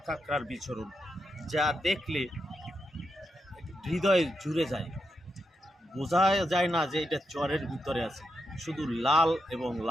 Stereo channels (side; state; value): both; normal; correlation 0.85